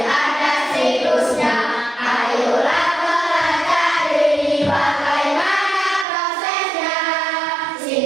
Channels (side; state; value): left; drops out; at 6.1 s